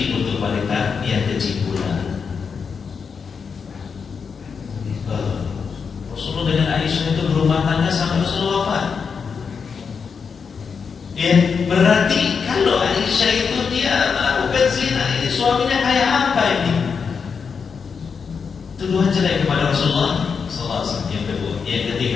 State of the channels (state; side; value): quieter; right; 5.9 dB